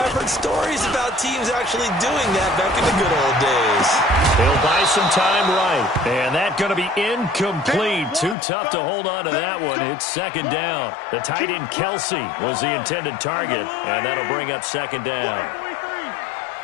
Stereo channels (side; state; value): right; drops out; at 8.3 s